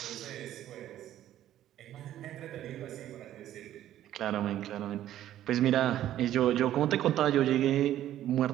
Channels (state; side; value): quieter; left; 12.4 dB